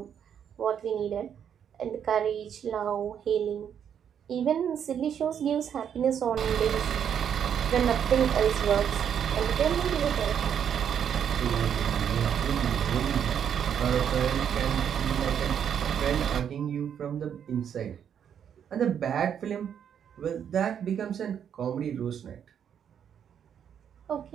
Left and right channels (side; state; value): left; quieter; 8.5 dB